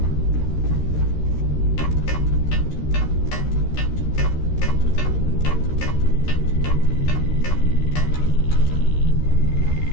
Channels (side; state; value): right; late; 13 ms